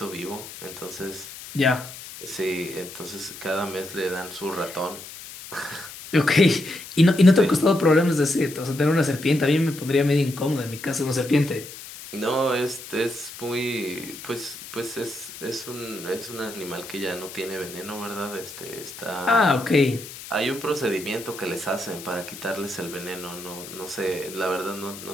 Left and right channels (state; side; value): noise; left; hiss, 13 dB below the sound